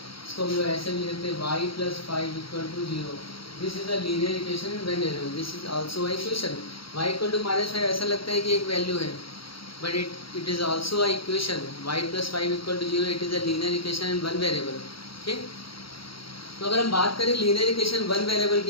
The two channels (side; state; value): right; late; 0.75 ms